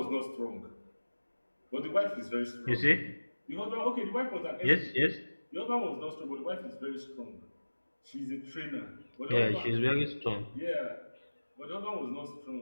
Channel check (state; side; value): inverted; both; correlation -1.00